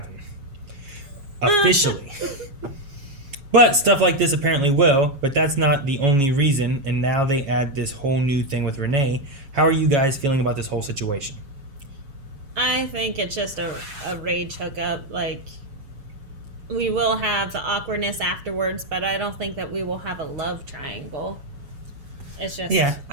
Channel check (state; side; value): late; left; 7.2 ms